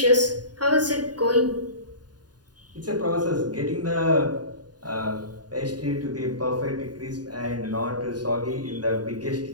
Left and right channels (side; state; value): left; late; 0.69 ms